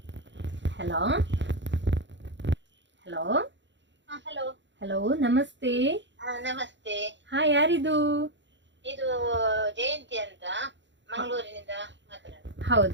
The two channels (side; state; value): left; late; 0.53 ms